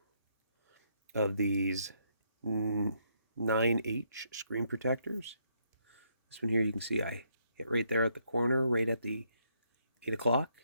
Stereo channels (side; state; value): both; inverted; correlation -0.74